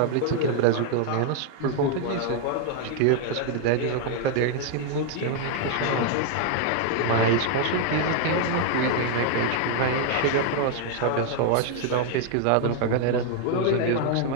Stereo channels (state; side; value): different; both; correlation 0.00